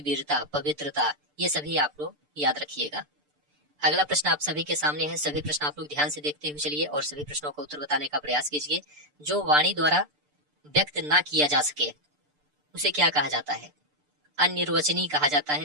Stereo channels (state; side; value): late; left; 6.8 ms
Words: पवित्रता, ये सभी आप लोग याद रखिएगा। अगला प्रश्न आप सभी के सामने है। सभी प्रश्न आप लोग ध्यान से देखते हुए चलिए और सभी प्रश्नों का उत्तर बताने का प्रयास कीजिए। जो वाणी द्वारा व्यक्त ना किया जा सके उसे क्या कहा जाता है। अनिर्वचनीय कहा जाता